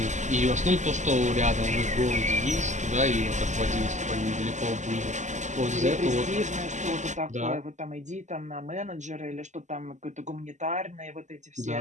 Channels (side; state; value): left; late; 0.34 ms